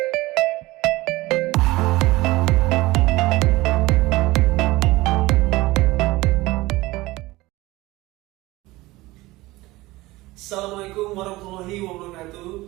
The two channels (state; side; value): quieter; left; 19.6 dB